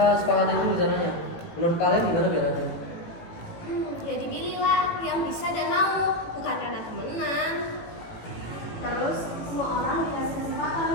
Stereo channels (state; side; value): late; right; 18 ms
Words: sepakati dulu rencananya. Menurut kalian gimana jalannya? Ya dipilihlah yang bisa dan mau, bukan karena temenan. Terus semua orang dikasih